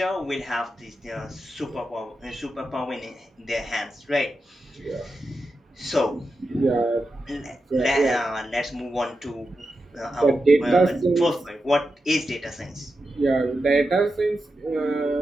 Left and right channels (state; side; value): normal; both; correlation 0.89